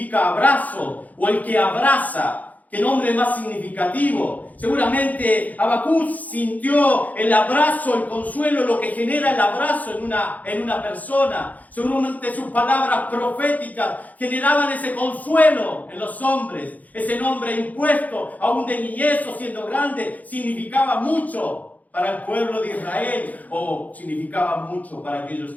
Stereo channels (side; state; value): right; late; 0.078 ms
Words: abrazo, o el que abraza. ¿Qué nombre más significativo? Seguramente Habacuc sintió el abrazo, el consuelo, lo que genera el abrazo en una persona. Seguramente sus palabras proféticas generaban ese consuelo en los hombres. Ese nombre impuesto, aún de niñez o siendo grande, significaba mucho. para el pueblo de Israel, significaba mucho para aquellos